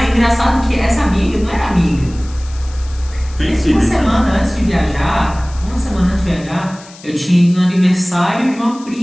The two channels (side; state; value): left; noise; hiss, 21 dB below the sound